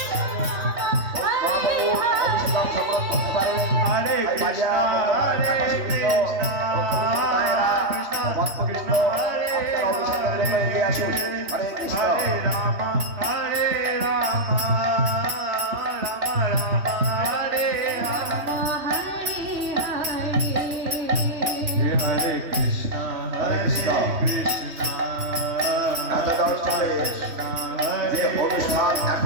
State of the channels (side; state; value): left; late; 3.1 ms